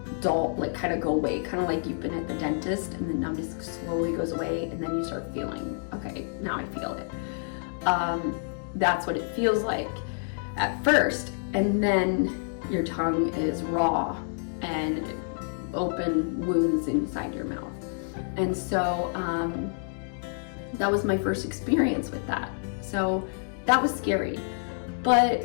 kind of go away, kind of like you've been at the dentist and the numbness slowly goes away, and then you start feeling, okay, now I feel it. That's what it feels like at first, and then your tongue is raw and open wounds inside your mouth. And so that was my first experience with that. So that was scary.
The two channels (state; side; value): silent; right; digital silence